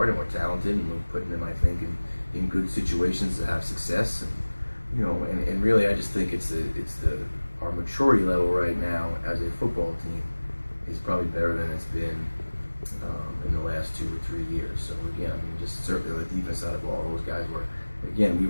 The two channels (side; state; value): both; inverted; correlation -1.00